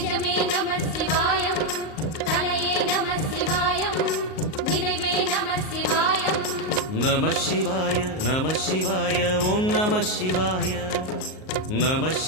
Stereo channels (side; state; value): right; late; 38 ms